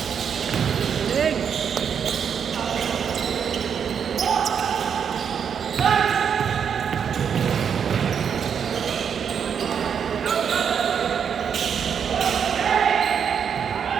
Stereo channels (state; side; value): quieter; left; 7.4 dB